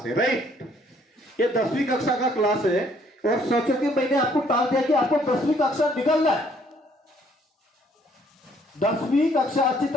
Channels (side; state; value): both; normal; correlation 0.64